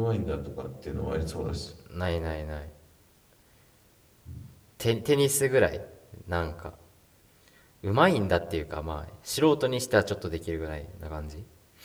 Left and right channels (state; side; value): identical; both; correlation 1.00